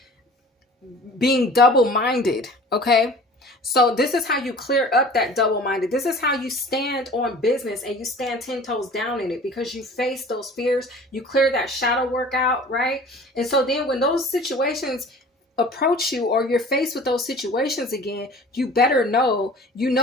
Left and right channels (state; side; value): normal; both; correlation 0.44